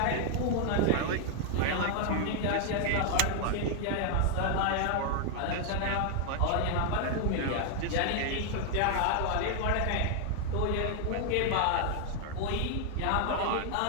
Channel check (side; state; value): both; different; correlation 0.00